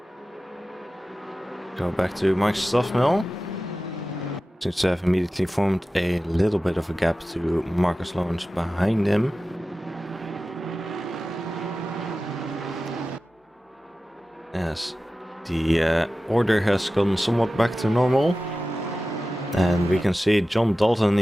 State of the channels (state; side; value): normal; both; correlation 0.95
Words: Go back to Mike's stuff mill. Seems to have immediately formed a little bit of a gap to Marcus Lawrence behind him. As the order has gone somewhat back to normal. And we can see John Dalton